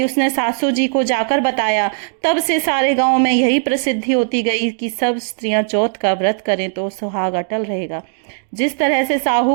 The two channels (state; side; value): silent; left; digital silence